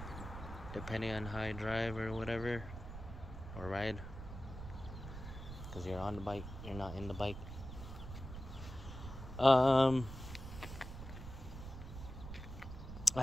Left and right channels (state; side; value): noise; right; rumble, 10 dB below the sound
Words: depending on how I drive or whatever, or ride, because you're on the bike, you're not in the bike. I